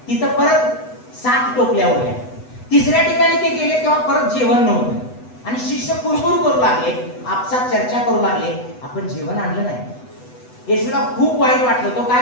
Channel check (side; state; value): right; late; 8.0 ms